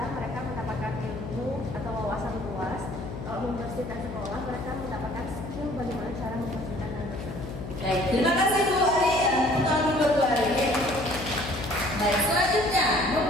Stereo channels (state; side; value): noise; left; hum, 8 dB below the sound